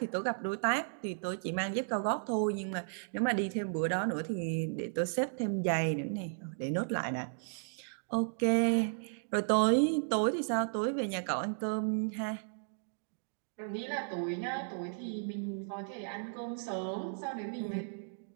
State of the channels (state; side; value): silent; left; digital silence